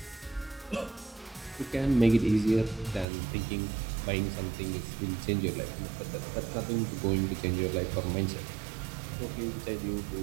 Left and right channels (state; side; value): drops out; left; at 3.1 s